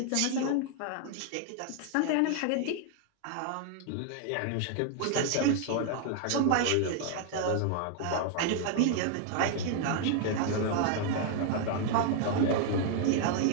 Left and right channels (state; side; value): different; both; correlation 0.00